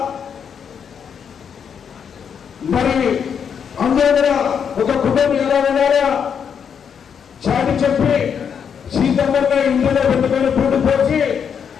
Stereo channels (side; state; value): right; quieter; 7.3 dB